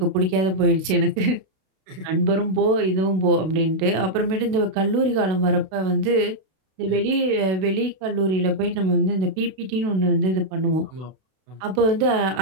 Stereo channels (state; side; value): late; left; 32 ms